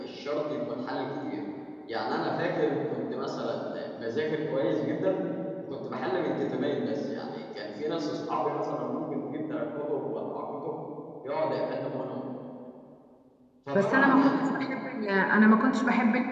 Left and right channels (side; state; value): both; identical; correlation 1.00